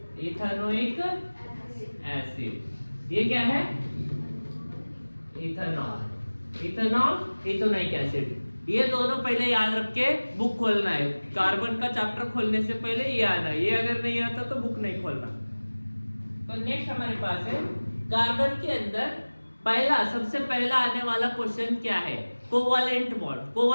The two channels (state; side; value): inverted; both; correlation -1.00